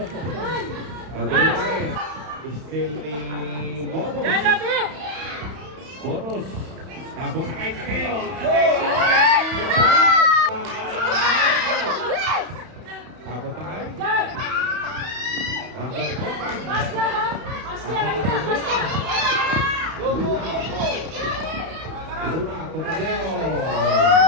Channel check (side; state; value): left; late; 31 ms